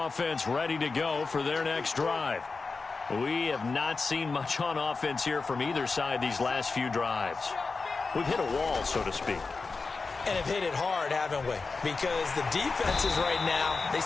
ready to go for their next drive. We have not seen much on offense here from either side these last few drives. We've hit a wall, so to speak. And have hit it hard, haven't we? Because the defenses right now, they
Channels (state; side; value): quieter; right; 4.2 dB